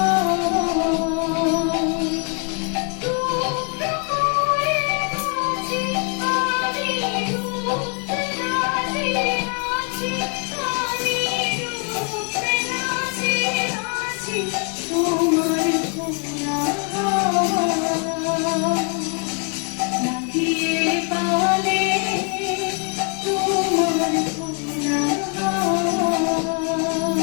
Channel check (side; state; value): right; quieter; 36.9 dB